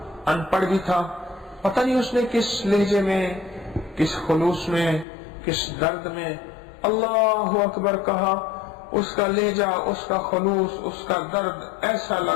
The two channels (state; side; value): drops out; right; at 5.1 s